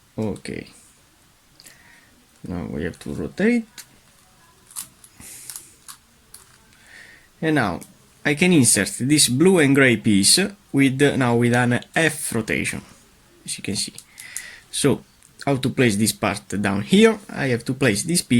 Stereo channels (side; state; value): both; identical; correlation 1.00